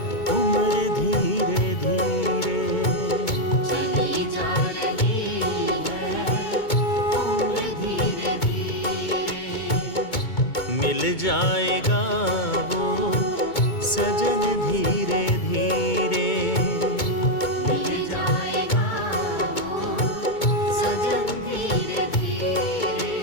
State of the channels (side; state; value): right; late; 2.2 ms